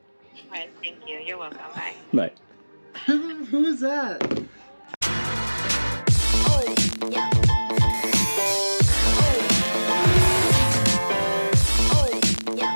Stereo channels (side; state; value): both; inverted; correlation -1.00